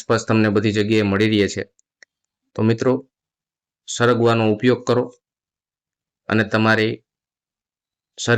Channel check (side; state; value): both; identical; correlation 1.00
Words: તમને બધી જગ્યાએ મળી રહે છે, તો મિત્રો સરગવાનો ઉપયોગ કરો અને તમારી